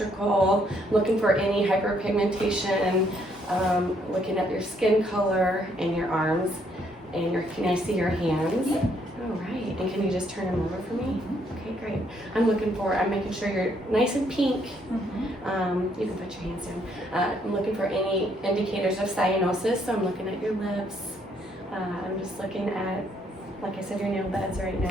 Looking for any hyperpigmentation. Looking at your skin color and your arms, and can I see your hands? Yep. All right. And can you just turn them over for me? Okay, great. I'm making sure you're nice and pink. You can put your hands down. I'm looking for any indicators of cyanosis, so I'm looking at your lips. I'm just looking at, like I said, your nail beds right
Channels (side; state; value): both; normal; correlation 0.70